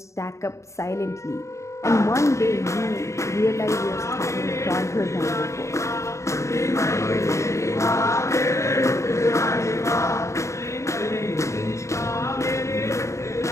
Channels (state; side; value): late; right; 0.14 ms